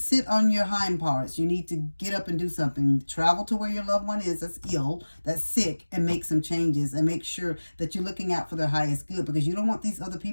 sit on your hind parts. You need to get up and do something. Travel to where your loved one is that's ill, that's sick, and make some changes, and make sure that you're looking out for their highest good, because you don't want these other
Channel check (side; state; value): both; inverted; correlation -1.00